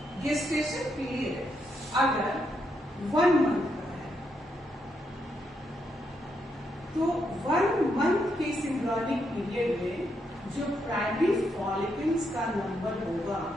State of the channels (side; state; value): both; normal; correlation 0.79